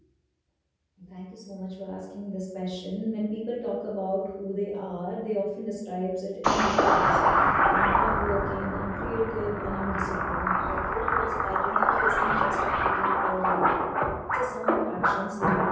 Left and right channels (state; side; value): identical; both; correlation 1.00